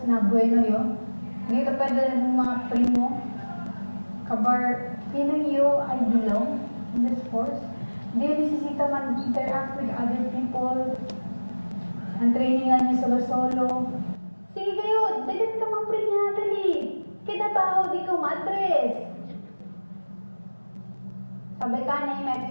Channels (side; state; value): both; inverted; correlation -1.00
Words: na bueno yun. Hindi ka pwede ng mga primo. Kabar, feeling you I belong in the sports. Hindi yung nisisita man interact with other people. Ang trainingan niyo solo-solo. Sige kayo, dagat ka mamprinya, dali. Kinabaho di ko madres. Sabi ka na yung